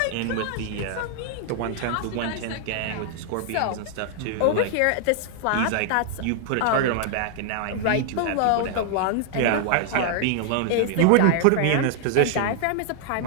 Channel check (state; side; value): different; both; correlation 0.00